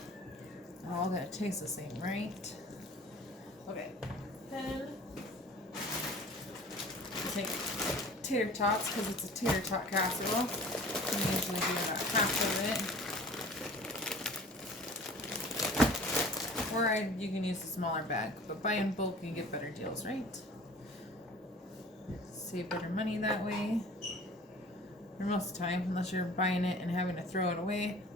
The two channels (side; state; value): both; normal; correlation 0.45